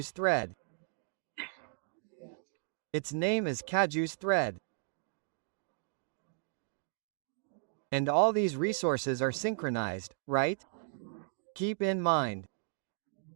thread. Its name is Kaju's thread. And all these resources are synchronized, right? Keep in mind.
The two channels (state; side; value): silent; left; digital silence